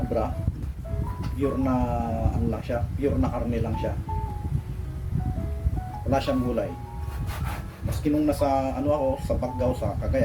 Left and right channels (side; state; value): both; identical; correlation 1.00